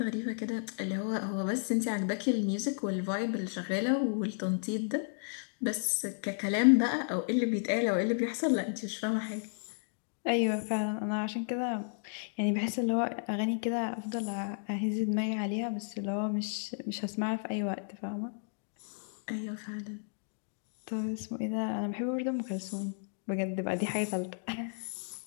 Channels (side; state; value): right; silent; digital silence